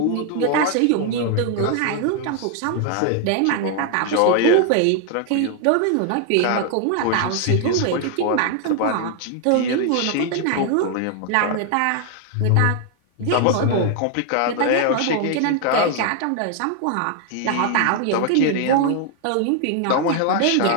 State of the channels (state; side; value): different; both; correlation 0.00